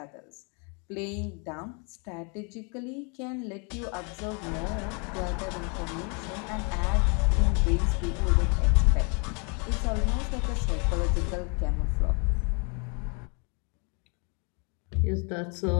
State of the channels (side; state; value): right; quieter; 35.0 dB